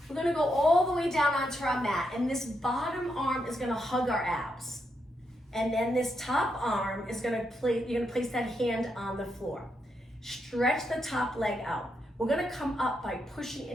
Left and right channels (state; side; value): normal; both; correlation 0.82